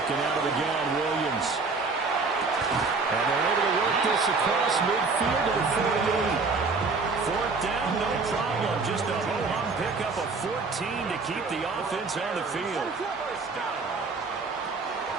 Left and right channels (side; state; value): left; quieter; 4.2 dB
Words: out of the gun, Williams. And they're able to work this across midfield to the 48. Fourth down, no problem. Just a ho-hum pickup of 14 to keep the offense on the field.